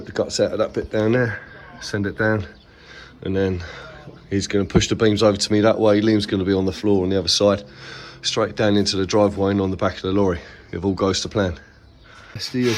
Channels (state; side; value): identical; both; correlation 1.00